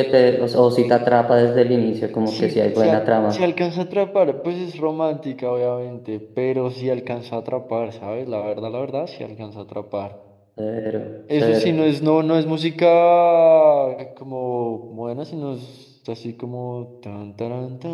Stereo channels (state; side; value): identical; both; correlation 1.00